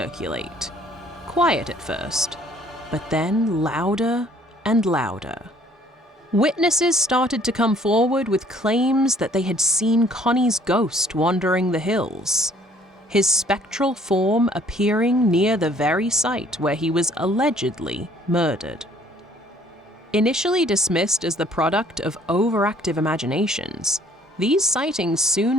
quiet at first, but then louder and louder. Witnesses started to come forward with claims that they had seen Connie's ghost wandering the hills, his spectral form appearing near the very site where he was allegedly murdered. Initially dismissed as the product of overactive imaginations, these sightings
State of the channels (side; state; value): both; normal; correlation 0.59